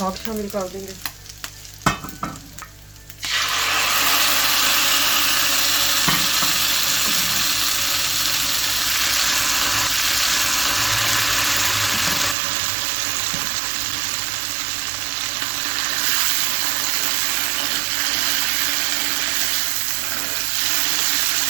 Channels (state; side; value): drops out; left; at 12.4 s